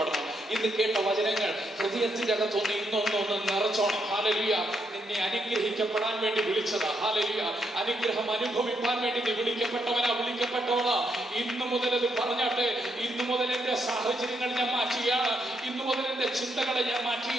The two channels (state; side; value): normal; both; correlation 0.78